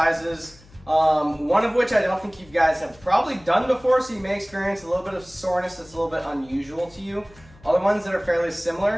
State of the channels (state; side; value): noise; left; hum, 25 dB below the sound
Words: one of which I don't think you guys have probably done before, so you may experience a little bit of soreness that's a little bit unusual to you. Other ones that are fairly